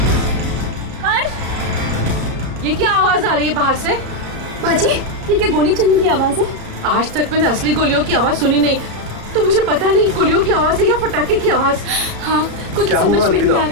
हर्ष, ये क्या आवाज आ रही है बाहर से? बाजी, ये क्या गोली चलने की आवाज है? आज तक मैंने असली गोलियों की आवाज सुनी नहीं, तो मुझे पता नहीं गोलियों की आवाज है या पटाखे की आवाज। हाँ, कुछ समझ में नहीं आ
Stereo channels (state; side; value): late; left; 34 ms